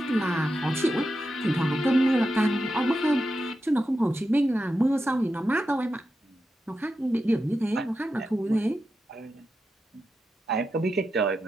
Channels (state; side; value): normal; both; correlation 0.89